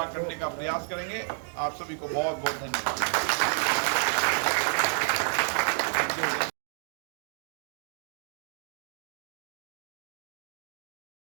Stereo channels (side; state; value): left; silent; digital silence